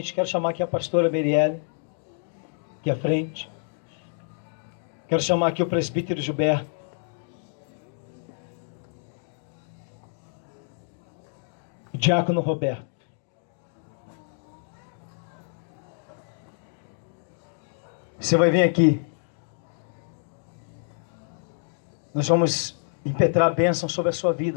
Quero chamar aqui a pastora Merielle, aqui à frente. Quero chamar aqui o presbítero Gilberto. O diácono Roberto. Você vai vir aqui. Nós vamos impetrar a bênção sobre a sua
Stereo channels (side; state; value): right; silent; digital silence